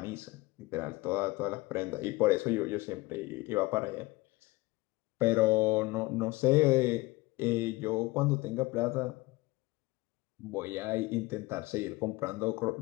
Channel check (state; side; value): quieter; right; 21.4 dB